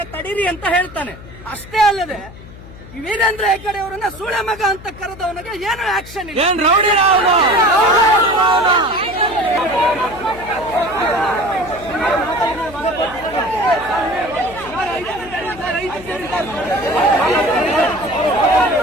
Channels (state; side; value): noise; left; hum, 17 dB below the sound